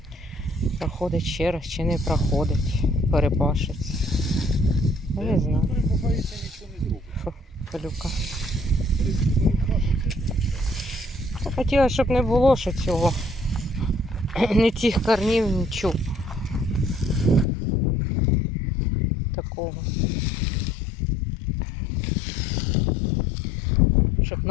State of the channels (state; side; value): drops out; right; at 17.4 s